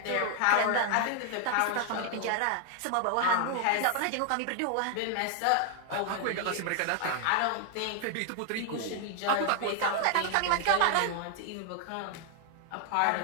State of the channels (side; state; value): both; different; correlation 0.00